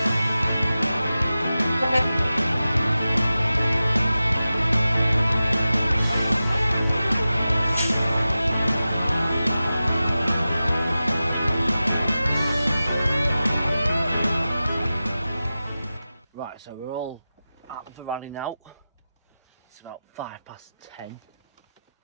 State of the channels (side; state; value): both; inverted; correlation -0.94